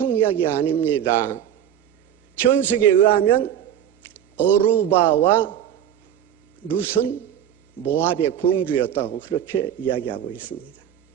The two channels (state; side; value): quieter; left; 10.1 dB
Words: 이야기 아닙니다. 전석에 의하면 오르바와 룻은 모압의 공주였다고 그렇게 이야기하고 있습니다.